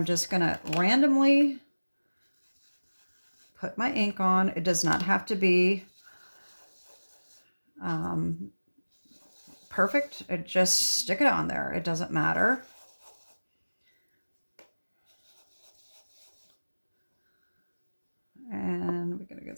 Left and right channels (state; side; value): inverted; both; correlation -1.00